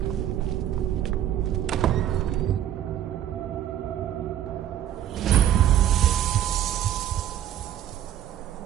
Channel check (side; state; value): left; quieter; 11.0 dB